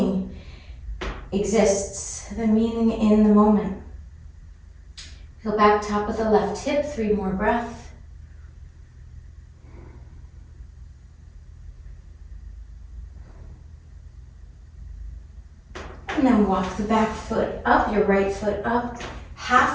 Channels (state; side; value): identical; both; correlation 1.00